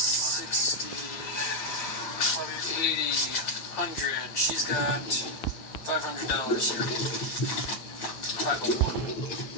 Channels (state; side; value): late; right; 8.9 ms